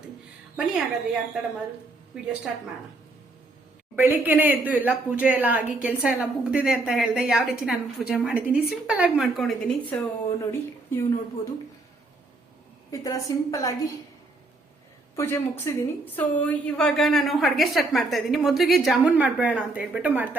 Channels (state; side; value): quieter; left; 3.1 dB